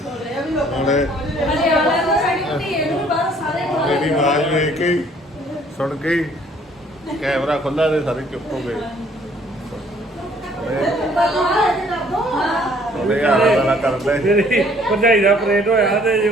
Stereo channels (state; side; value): normal; both; correlation 0.60